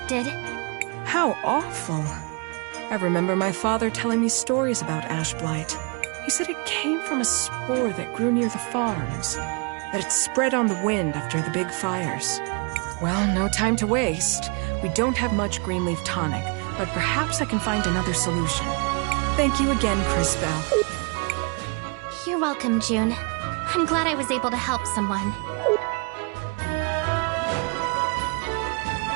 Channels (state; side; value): quieter; left; 33.6 dB